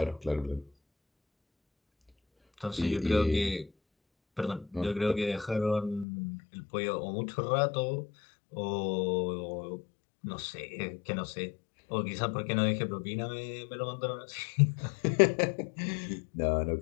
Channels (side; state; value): right; drops out; at 6.1 s